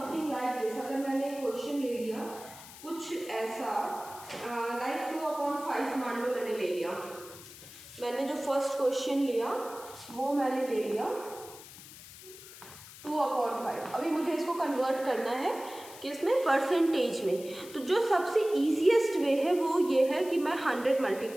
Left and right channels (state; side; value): noise; left; hiss, 17 dB below the sound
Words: like this, अगर मैंने एक क्वेश्चन ले लिया कुछ ऐसा लाइक 2/5 मान लो मैंने ले लिया। मैंने जो फर्स्ट क्वेश्चन लिया वो मैंने ले लिया 2/5। अभी मुझे इसको कन्वर्ट करना है किसमें, परसेंटेज में। तो जो सबसे ईजीएस्ट वे है वो ये है कि मैं 100